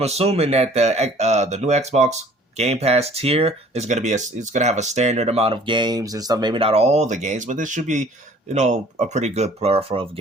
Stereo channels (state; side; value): normal; both; correlation 0.53